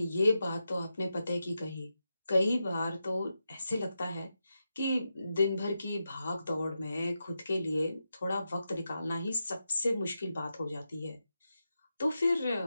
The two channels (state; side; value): inverted; both; correlation -0.88